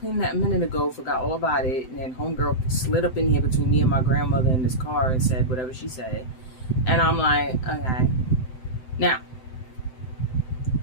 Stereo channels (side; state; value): right; late; 7.8 ms